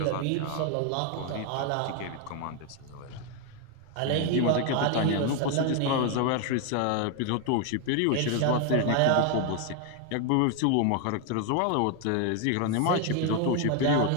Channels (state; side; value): different; both; correlation 0.01